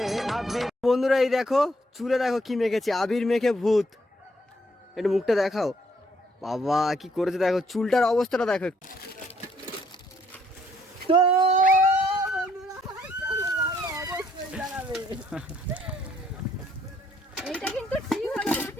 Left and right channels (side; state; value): both; normal; correlation 0.68